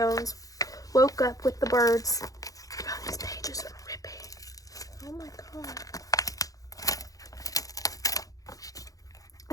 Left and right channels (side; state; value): right; late; 0.17 ms